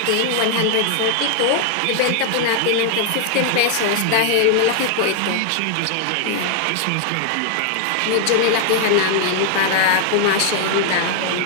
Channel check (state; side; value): different; both; correlation 0.00